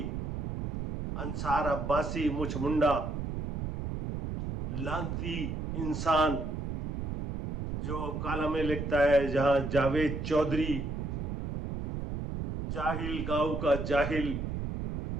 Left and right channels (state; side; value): noise; right; rumble, 4 dB below the sound